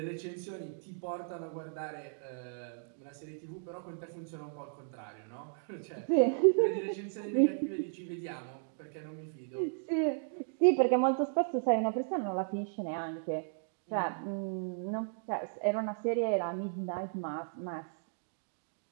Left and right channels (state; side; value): silent; left; digital silence